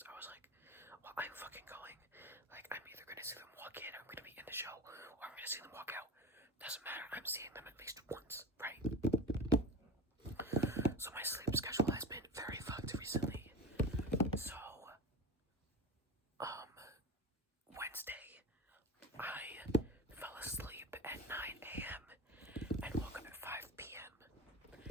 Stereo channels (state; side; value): normal; both; correlation 0.31